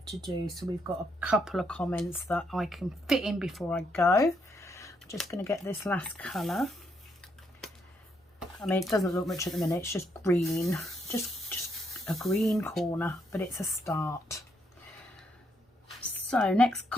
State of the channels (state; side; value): normal; both; correlation 0.75